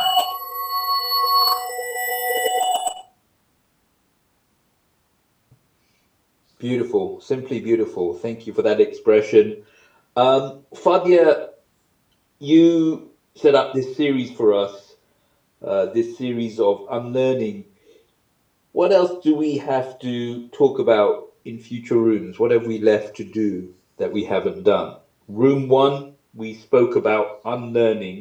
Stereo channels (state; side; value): identical; both; correlation 1.00